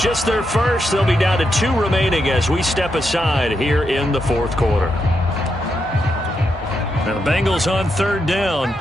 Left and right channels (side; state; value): both; normal; correlation 0.83